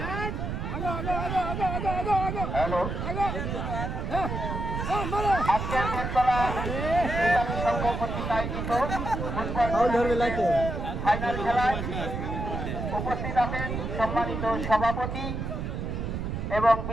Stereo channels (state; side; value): noise; right; rumble, 3 dB below the sound